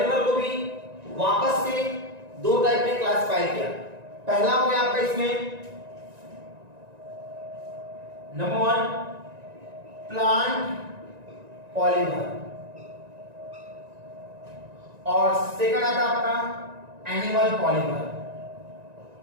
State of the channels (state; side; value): late; left; 1.9 ms